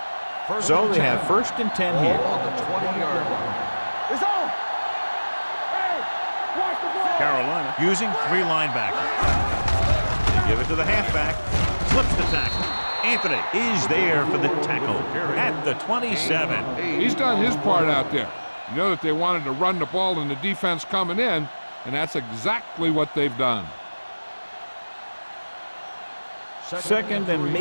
So they have 1st and 10 here. On the 20-yard line. It's on. Hey, watch the ball. Carolina using 3 linebackers. They give it to the halfback. Slips the tackle. Anthony is there for the tackle at the 27. He's done his part out there. You know that they wanted to run the ball in the defense coming in, and that's exactly what they've done. 2nd and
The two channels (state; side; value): inverted; both; correlation -1.00